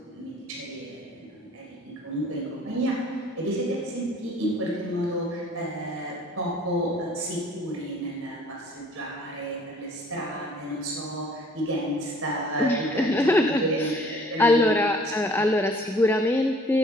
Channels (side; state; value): both; normal; correlation 0.54